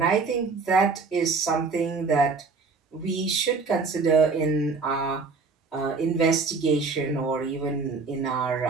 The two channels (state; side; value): quieter; left; 4.5 dB